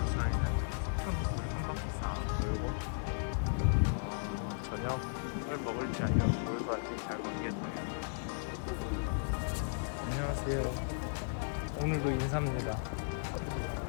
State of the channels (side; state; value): right; silent; digital silence